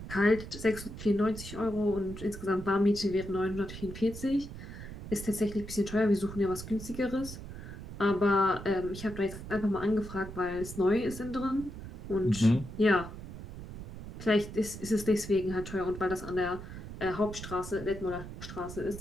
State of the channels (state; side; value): noise; right; rumble, 11 dB below the sound